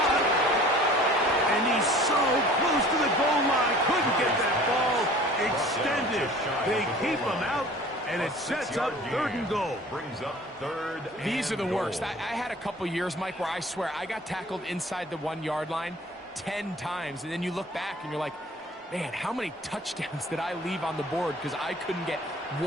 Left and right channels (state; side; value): normal; both; correlation 0.47